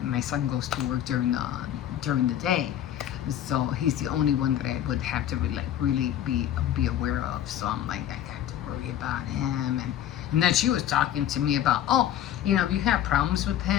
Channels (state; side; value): quieter; right; 11.2 dB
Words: My son goes to work during the day, so he's the only one that I would have to really be aware of. So I'm like, I got to worry about him. And then she was talking to me about, oh, you know, if you have problems with